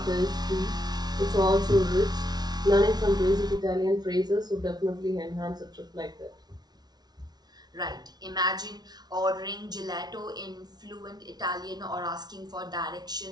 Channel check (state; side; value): late; left; 0.19 ms